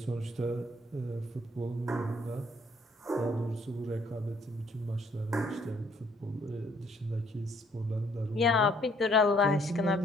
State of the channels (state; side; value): normal; both; correlation 0.64